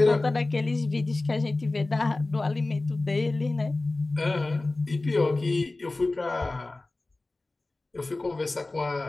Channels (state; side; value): quieter; right; 3.1 dB